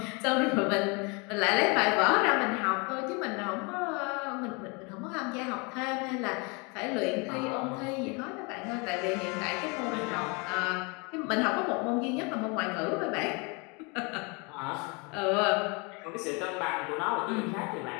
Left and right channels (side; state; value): right; quieter; 30.6 dB